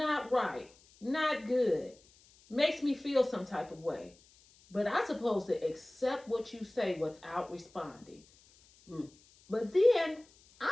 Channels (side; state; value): left; noise; hiss, 28 dB below the sound